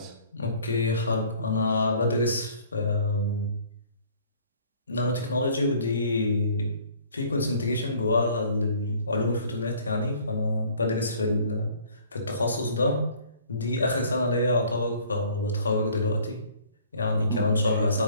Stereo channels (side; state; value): both; inverted; correlation -0.55